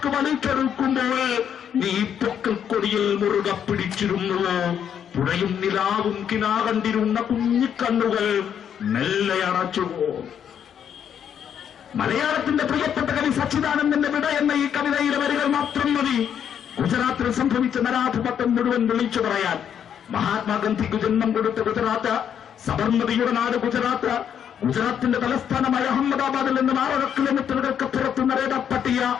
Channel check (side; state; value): right; quieter; 8.7 dB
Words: വലിച്ചെടുക്കുമ്പോൾ നീ പൊക്കൽ കൊടിയിൽ മുറുകെ പിടിച്ചിരുന്നുവോ? പുഴയും നിലാവും കിനാ കണ്ടിരുന്ന കുഞ്ഞിക്കണ്ണുകൾ മെല്ലെ അടച്ചുവോ? മലയാളത്തിന്റെ പ്രിയപ്പെട്ട കവി സച്ചിദാനന്ദന്റെ വിട എന്ന ഈ കവിതയിലെ വരികൾ മാത്രം മതി ഗുജറാത്തിൽ സംഭവിച്ച നരാധിപത്യം മുഴുവൻ വിളിച്ചു പറയാൻ. മഹാത്മാഗാന്ധിക്ക് ജന്മം കൊടുത്ത ഗുജറാത്ത്, സബർമതിയുടെ നാട് ഗുജറാത്ത്, ഗുജറാത്തിന്റെ തലസ്ഥാനമായ അഹമ്മദാബാദിൽ നിന്ന് 6 കിലോമീറ്ററുകൾക്ക് പുറത്ത്